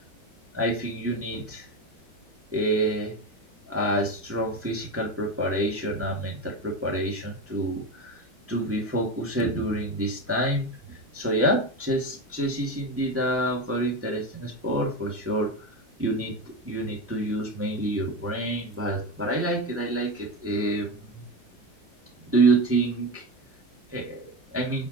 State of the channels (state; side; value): normal; both; correlation 0.19